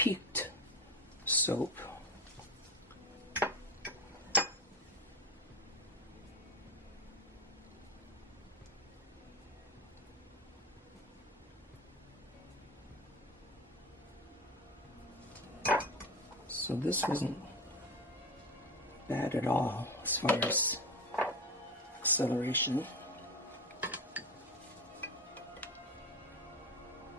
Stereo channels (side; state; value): both; normal; correlation 0.24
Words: soap. So this wasn't bad at all as far as acceleration.